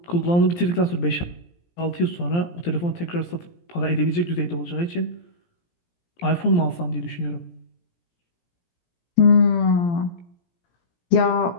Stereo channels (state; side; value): late; right; 17 ms